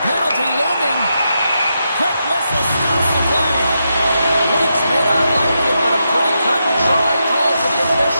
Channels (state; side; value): inverted; both; correlation -0.85